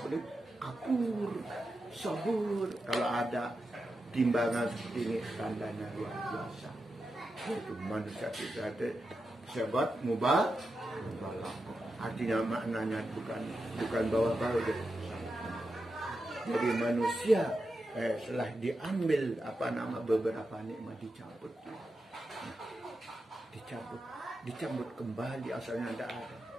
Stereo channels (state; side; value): normal; both; correlation 0.89